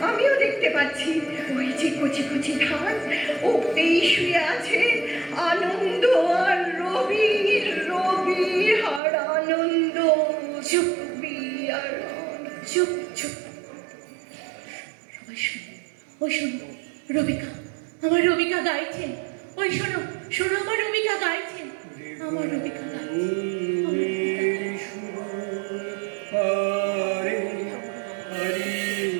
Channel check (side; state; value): left; drops out; at 9.0 s